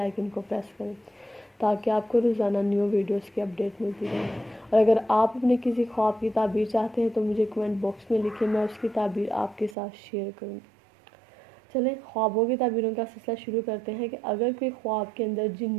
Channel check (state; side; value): drops out; left; at 9.8 s